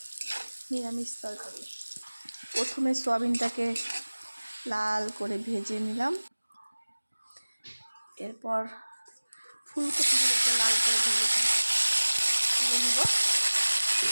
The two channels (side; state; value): both; inverted; correlation -1.00